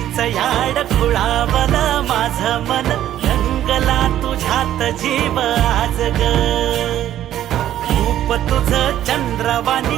याड खुळावल माझं मन, रंगला तुझ्यात जीव आज ग, रूप तुझं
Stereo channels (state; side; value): quieter; left; 12.0 dB